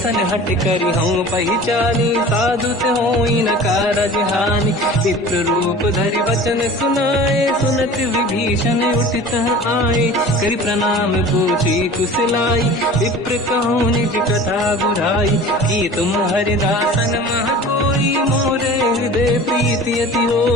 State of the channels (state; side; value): normal; both; correlation 0.40